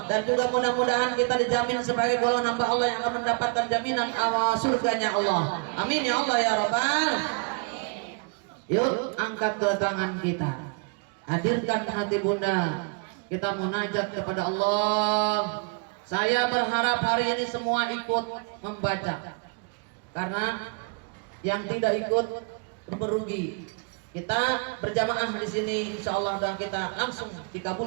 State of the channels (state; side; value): quieter; left; 34.7 dB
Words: dan juga mudah-mudahan kita dijamin sebagai golongan hamba Allah yang akan mendapatkan jaminan awal surganya Allah. Amin ya Allah ya Rabbal. Yuk angkat ke tangan kita, hadirkan hati Bunda, kita munajat kepada Allah. Saya berharap hari ini semua ikut membaca, karena yang tidak ikut merugi. Kita berjamaah di sini insyaallah dan kita langsung